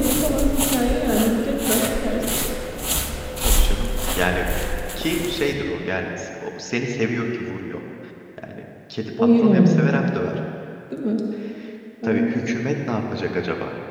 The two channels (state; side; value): identical; both; correlation 1.00